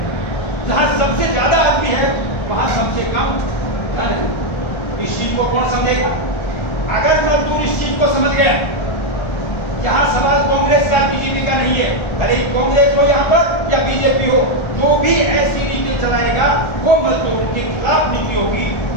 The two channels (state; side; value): late; right; 1.3 ms